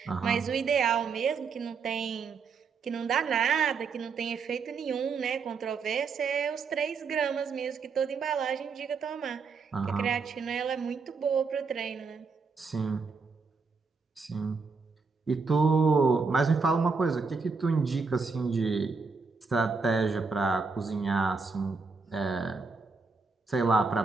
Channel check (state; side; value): quieter; left; 4.8 dB